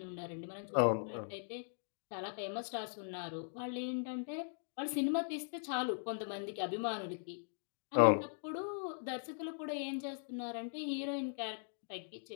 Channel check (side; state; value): right; silent; digital silence